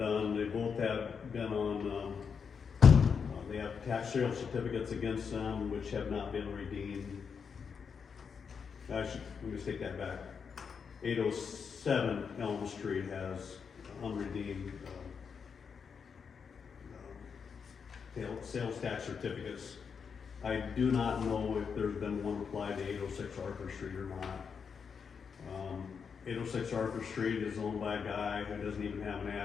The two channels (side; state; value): right; quieter; 6.2 dB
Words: They both have been on, they have tax sale certificates against them which have not been redeemed. Let me just take that back. 807 Elm Street has unredeemed sales tax certificates. I do not know if there's been one applied to 806 Arthur Street or not. 806 Arthur Street is owned by a guy who doesn't even have an